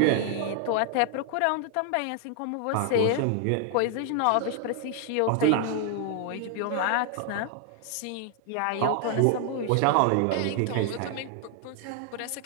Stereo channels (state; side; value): different; both; correlation 0.00